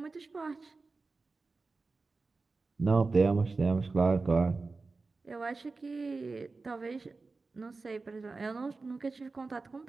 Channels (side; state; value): left; quieter; 3.9 dB